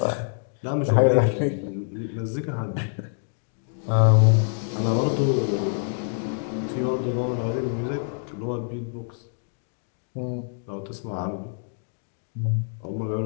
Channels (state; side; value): silent; right; digital silence